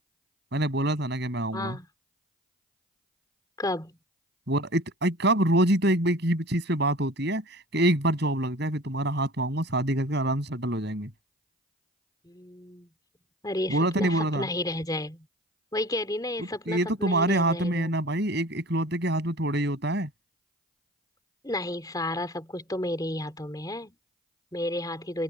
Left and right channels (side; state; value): both; normal; correlation 0.43